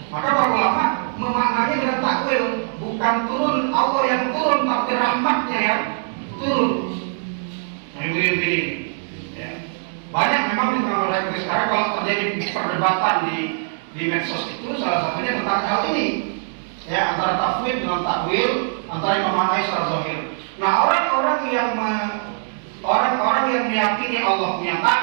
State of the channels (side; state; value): left; silent; digital silence